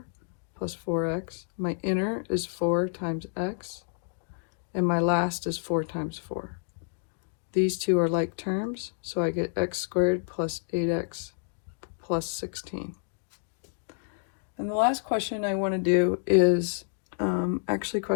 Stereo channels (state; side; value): silent; right; digital silence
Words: plus 4x. My inner is 4 times x. And my last is 4 times 4. These two are like terms, so I get x squared plus 8x plus 16. And the last question I want to do is actually